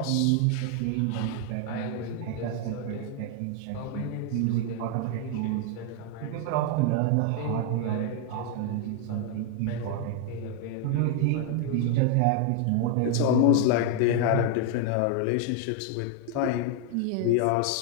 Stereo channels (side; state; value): both; different; correlation 0.00